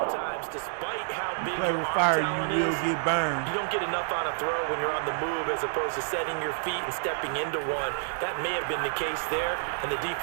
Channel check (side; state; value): left; silent; digital silence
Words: despite how big Play your with arm fire, talent you will is, get burned. you don't get enough on a throw when you're on the move as opposed to setting your feet and stepping into one. That may have been the case there, and the